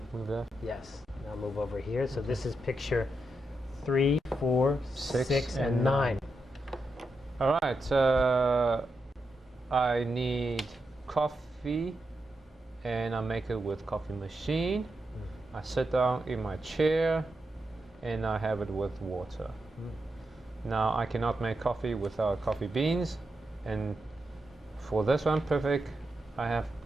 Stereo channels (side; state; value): both; normal; correlation 0.86